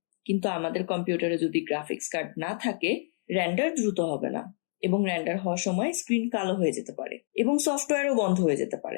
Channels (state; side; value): silent; right; digital silence